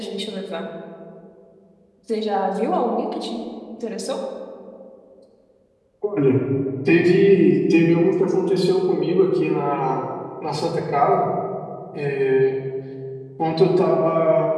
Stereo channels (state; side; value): identical; both; correlation 1.00